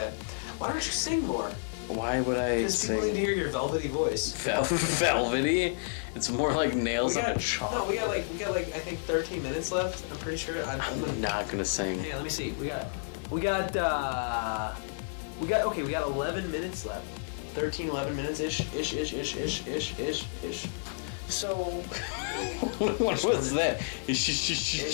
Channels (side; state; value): right; silent; digital silence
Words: Why don't you sing more? Why would I? Because people need to hear your velvety voice. Velvety? It's more like nails. We got like I think 13 minutes left. I'm pretty sure. I'm not gonna sing. Hang on, let me see. We got 11 minutes left. 11 minutes ish. So what was that?